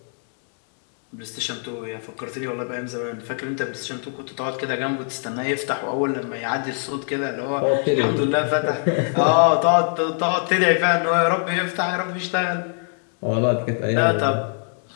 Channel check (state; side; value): silent; right; 56 dB below the other